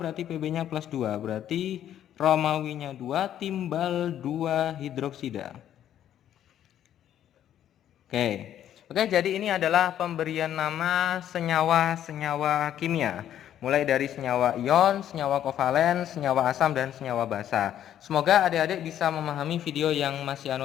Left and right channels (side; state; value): right; quieter; 10.9 dB